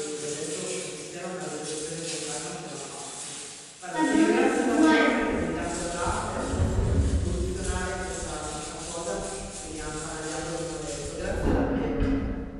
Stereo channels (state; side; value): identical; both; correlation 1.00